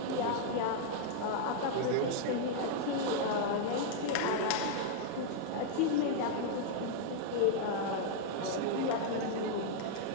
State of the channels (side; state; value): both; different; correlation -0.01